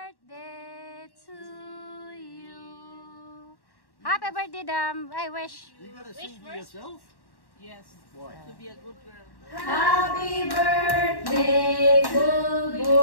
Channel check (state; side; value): late; right; 1.1 ms